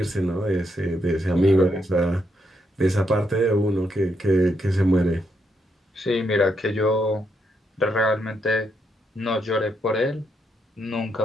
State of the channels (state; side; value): normal; both; correlation 0.79